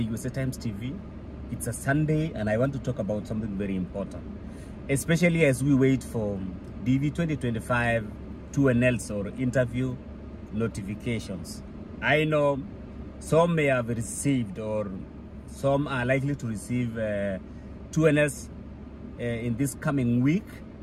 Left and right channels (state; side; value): identical; both; correlation 1.00